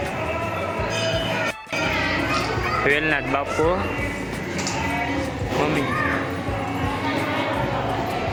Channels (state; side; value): identical; both; correlation 1.00